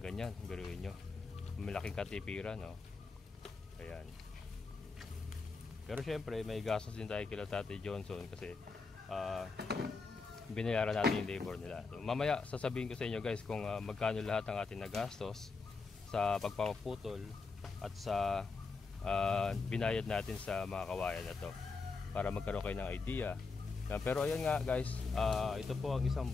Biruin nyo, malaking katipiran, no? Ayan. Pero syempre may gastos din tayo kila Tatay Johnson kasi binayaran natin yung labor nila. So, mamaya sasabihin ko sa inyo guys kung magkano lahat ang ating nagastos sa pagpapaputol at sa binayad natin sa mga kawayan na to para magkaroon kayo ng idea. Pero ayan nga guys, ito po ang isang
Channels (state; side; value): quieter; right; 4.3 dB